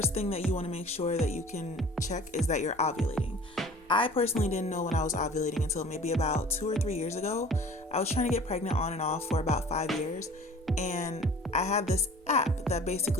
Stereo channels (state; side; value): normal; both; correlation 0.46